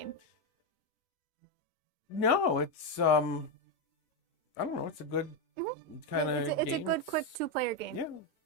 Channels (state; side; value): normal; both; correlation 0.06